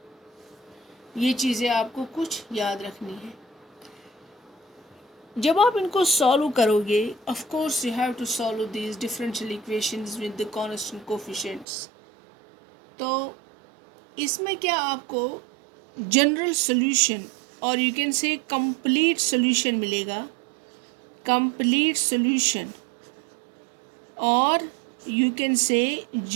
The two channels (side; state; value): left; drops out; at 11.7 s